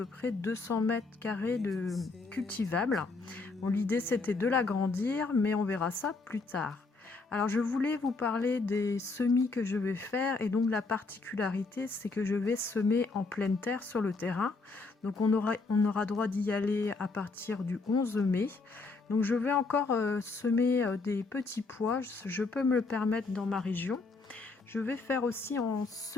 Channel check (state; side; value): quieter; right; 3.9 dB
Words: près 200 mètres carrés de cultivable. Bon, l'idée c'était de l'agrandir, mais on verra ça plus tard. Alors je voulais vous parler des semis que je vais faire et donc la particularité c'est que je vais semer en pleine terre sur le terrain. Donc on aura droit d'y aller à partir du 11 mai. Donc je vais encore semer des petits pois, je peux me le permettre dans ma région. Je vais faire aussi en